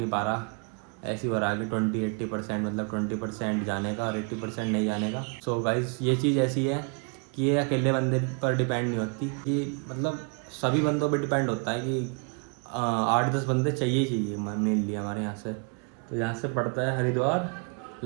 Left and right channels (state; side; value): quieter; left; 37.1 dB